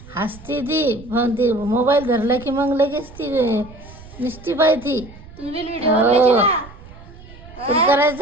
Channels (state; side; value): noise; right; rumble, 19 dB below the sound